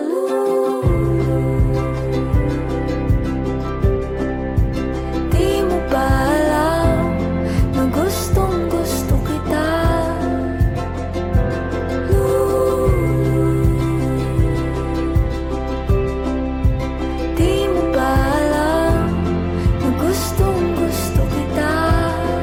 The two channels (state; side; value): identical; both; correlation 1.00